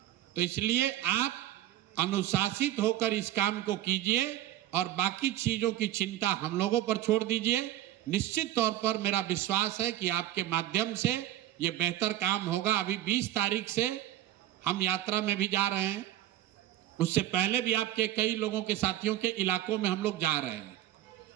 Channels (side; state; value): left; quieter; 13.6 dB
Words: तो इसलिए आप अनुशासित होकर इस काम को कीजिए और बाकी चीजों की चिंता हम लोगों पर छोड़ दीजिए। निश्चित तौर पर मेरा विश्वास है कि आपके माध्यम से ये बेहतर काम होगा। अभी 20 तारीख से हम यात्रा में भी जा रहे हैं, उससे पहले भी आपके कई लोगों के साथियों के इलाकों में हम लोग जा रहे हैं।